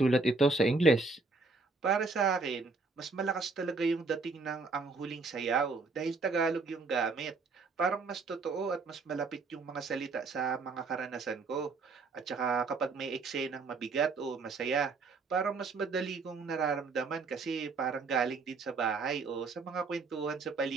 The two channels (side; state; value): left; quieter; 4.1 dB